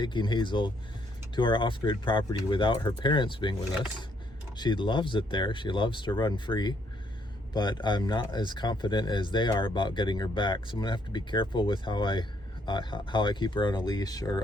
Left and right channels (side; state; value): both; normal; correlation 0.70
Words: Hazel to our off-grid property without her parents being with us. She loves it there. She loves to run free, but I'm not as confident as they are about getting her back. So I'm gonna have to be careful with how I keep her on a leash